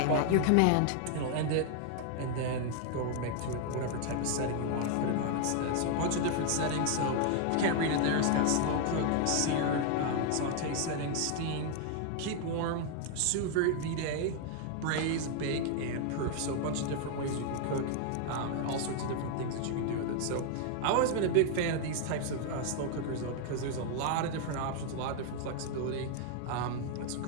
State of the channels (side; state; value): both; different; correlation 0.00